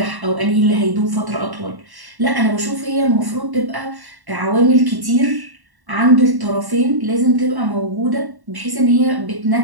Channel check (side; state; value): left; late; 1.1 ms